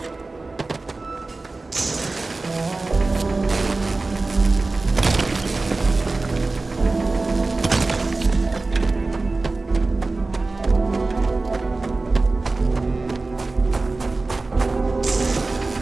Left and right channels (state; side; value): quieter; left; 3.4 dB